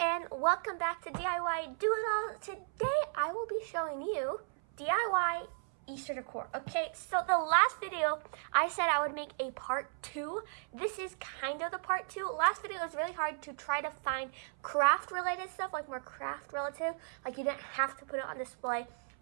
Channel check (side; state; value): left; silent; 54 dB below the other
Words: welcome back to DIY Do It All. Today I will be showing you DIY Easter decor. Okay, so the last video I said I would make a part 2. This is kind of the part 2. Last video was really hard to try to find craft related stuff, like more craft relative, like you didn't have to put it on display.